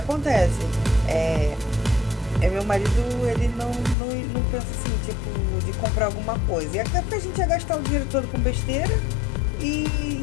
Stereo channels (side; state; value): right; drops out; at 4.0 s